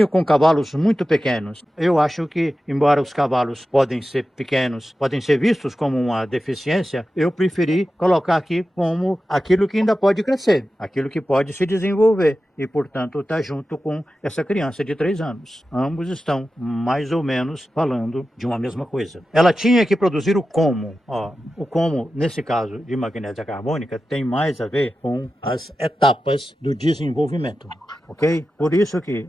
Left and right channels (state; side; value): normal; both; correlation 0.93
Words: com cavalos muito pequenos. Eu acho que, embora os cavalos podem ser pequenos, podem ser vistos como uma deficiência, eu preferi colocar aqui como aquilo que ainda pode crescer, aquilo que pode se desenvolver e, portanto, está junto com essa criança de 3 anos. Ambos estão mais ou menos falando de uma mesma coisa. Ela tinha que produzir o como. O como, nesse caso de magnésia carbônica, tem mais a ver com as etapas do desenvolvimento, ok? Por isso que